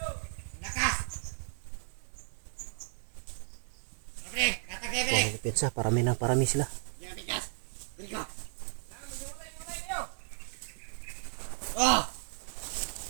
Lakas. Pre, katagay, pre. Oh, pensa, parami sila. Yan, bigas. Bili ko. Oh!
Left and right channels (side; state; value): left; silent; 55 dB below the other